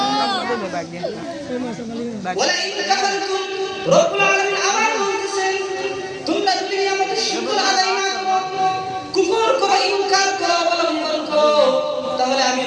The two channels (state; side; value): identical; both; correlation 1.00